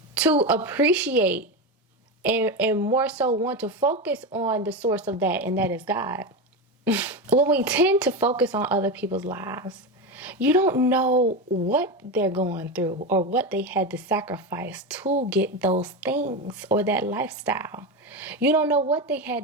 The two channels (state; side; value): normal; both; correlation 0.17